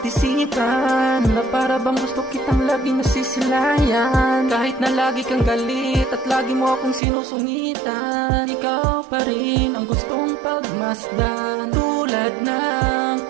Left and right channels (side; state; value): left; drops out; at 7.0 s